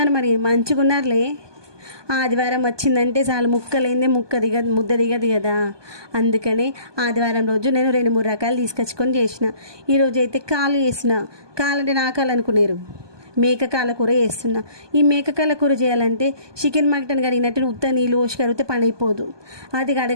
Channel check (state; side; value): late; left; 1.2 ms